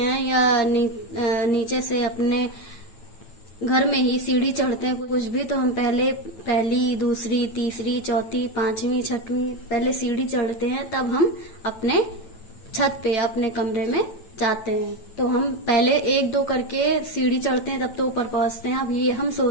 या नीचे से अपने घर में ही सीढ़ी चढ़ते हैं कुछ भी, तो हम पहली, दूसरी, तीसरी, चौथी, पांचवी, छठवीं पहले सीढ़ी चढ़ते हैं, तब हम अपने छत पे, अपने कमरे में जाते हैं। तो हम पहले 1-2 करके सीढ़ी चढ़ते हैं, तब तो ऊपर पहुंचते हैं। अब ये हम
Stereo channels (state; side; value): late; right; 9.0 ms